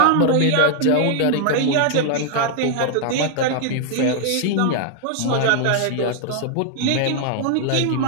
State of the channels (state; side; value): different; both; correlation 0.00